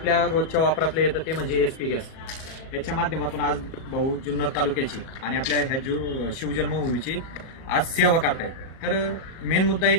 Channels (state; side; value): late; right; 37 ms